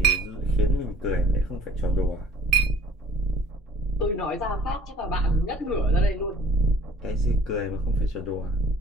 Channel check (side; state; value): both; normal; correlation 0.49